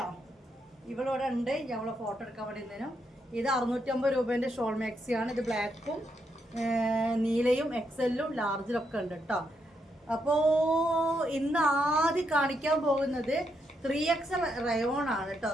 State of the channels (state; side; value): normal; both; correlation 0.80